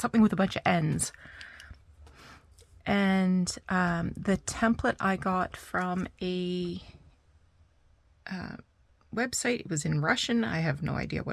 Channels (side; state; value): both; identical; correlation 1.00